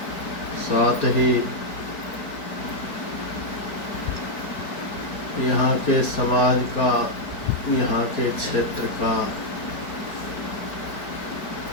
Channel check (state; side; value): late; right; 4.8 ms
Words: साथ ही यहाँ के समाज का, यहाँ के क्षेत्र का,